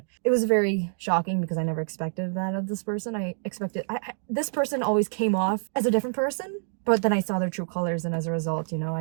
it was very shocking because I never expected that of this person. I expected this person always came off as a different person, but then I saw their true colors, and as a result,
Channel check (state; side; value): silent; left; digital silence